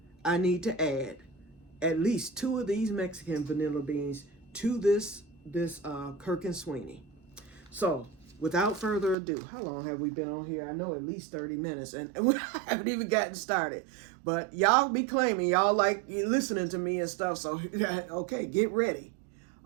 I need to add at least 2 of these Mexican vanilla beans to this Kirk and Sweeney. So without further ado, how long have we been on here? I know at least 30 minutes, and we haven't even gotten started. But y'all be claiming y'all like listening to me and stuff, so okay, get ready.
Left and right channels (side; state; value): left; drops out; at 9.2 s